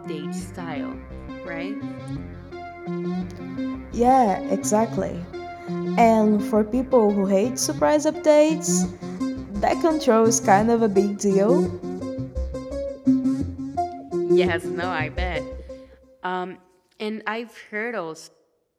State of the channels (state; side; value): identical; both; correlation 1.00